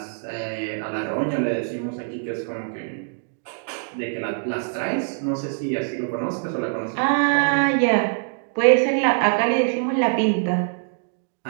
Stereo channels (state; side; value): silent; left; digital silence